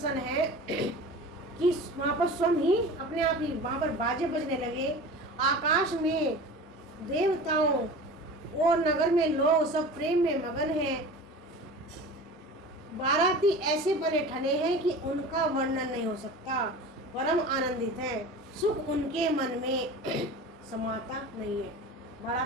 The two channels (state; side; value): normal; both; correlation 0.36